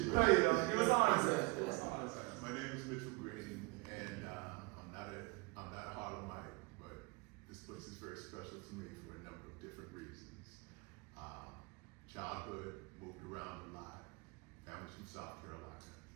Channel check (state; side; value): quieter; left; 26.9 dB